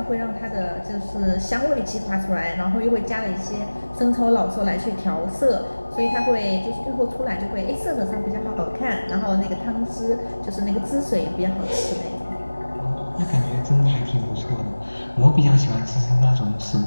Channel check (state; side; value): inverted; both; correlation -1.00